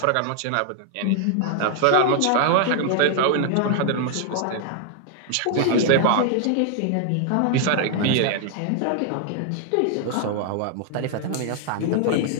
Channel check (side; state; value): both; different; correlation 0.00